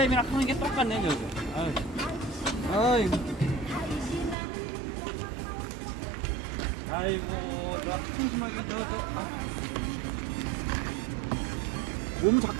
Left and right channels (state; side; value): drops out; left; at 4.4 s